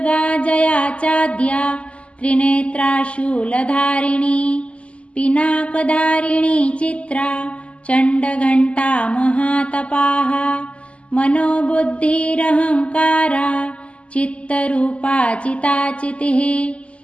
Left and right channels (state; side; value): late; right; 0.059 ms